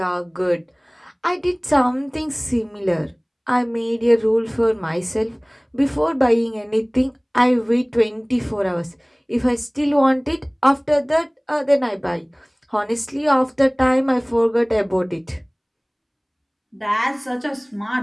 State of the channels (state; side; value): identical; both; correlation 1.00